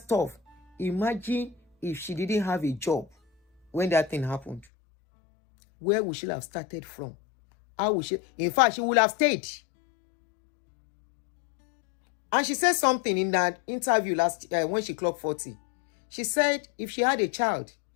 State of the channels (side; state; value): right; drops out; at 4.7 s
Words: Imagine if she didn't have a job when that thing happened. Where would she have started from? How would she? In fact, she would have stayed. And she said something in that interview when she clocked 40. She said if she had a child,